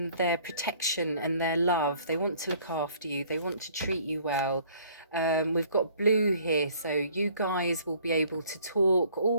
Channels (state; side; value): inverted; both; correlation -0.57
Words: their protection and their love. They want to look after you. They want to treat you well. We've got blue here, so you guys will be able to talk